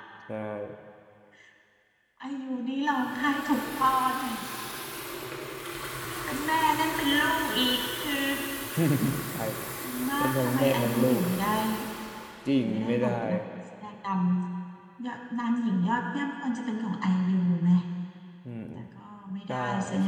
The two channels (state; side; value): identical; both; correlation 1.00